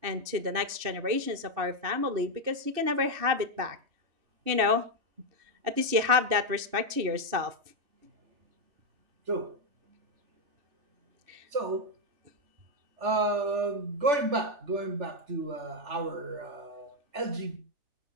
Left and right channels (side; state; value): left; late; 2.7 ms